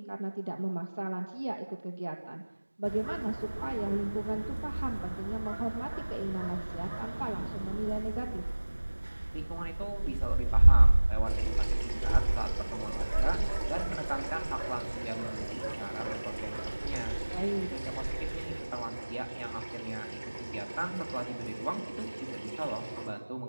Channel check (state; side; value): inverted; both; correlation -1.00